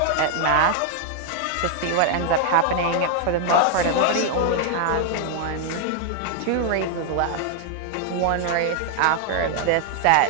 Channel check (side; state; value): both; different; correlation 0.00